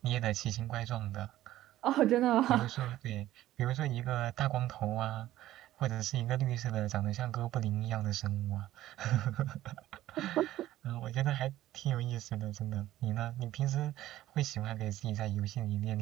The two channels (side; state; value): left; quieter; 14.3 dB